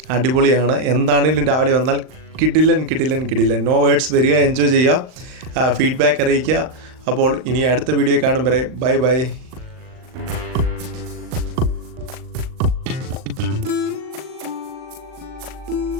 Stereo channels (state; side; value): late; left; 38 ms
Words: അടിപൊളിയാണ്. എന്താണെങ്കിലും രാവിലെ വന്നാൽ കിടിലൻ. No words. വരിക, എൻജോയ് ചെയ്യുക, ഫീഡ്ബാക്ക് അറിയിക്കുക. അപ്പോൾ ഇനി അടുത്ത വീഡിയോ കാണും വരെ ബൈ.